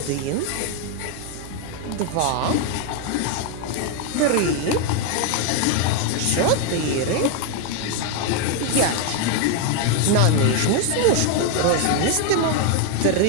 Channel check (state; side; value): different; both; correlation 0.01